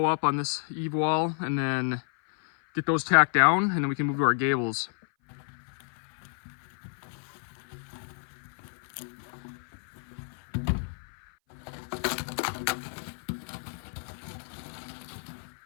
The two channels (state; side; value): silent; right; 56 dB below the other